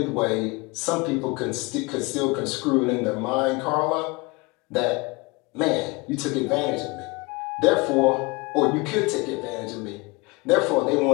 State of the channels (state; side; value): quieter; right; 25.8 dB